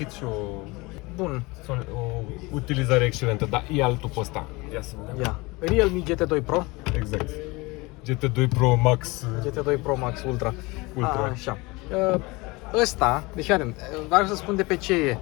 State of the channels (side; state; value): right; quieter; 24.0 dB